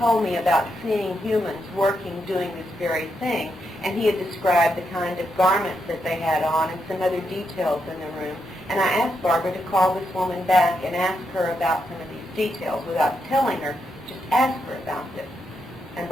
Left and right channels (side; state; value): both; normal; correlation 0.82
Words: me about seeing humans working, doing this very thing, and he had described the kind of garments that they had on and some other details in the room. And I asked Barbara to call this woman back and ask her about some of these details without telling her, just ask her about this. And